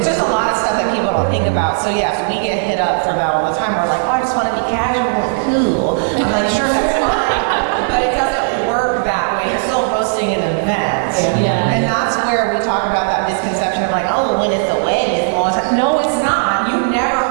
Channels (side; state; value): left; silent; digital silence